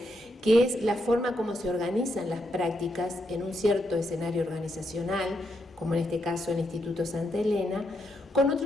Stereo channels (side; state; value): both; normal; correlation 0.80